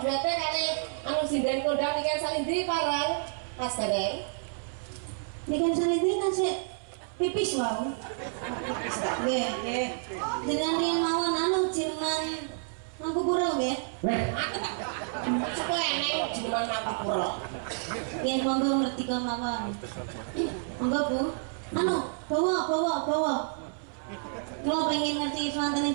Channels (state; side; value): silent; left; 58 dB below the other